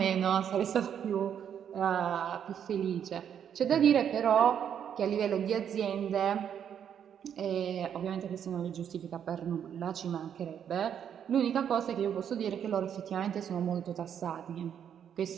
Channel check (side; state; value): left; quieter; 8.7 dB